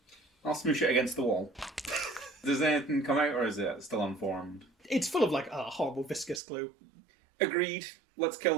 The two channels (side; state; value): left; drops out; at 6.4 s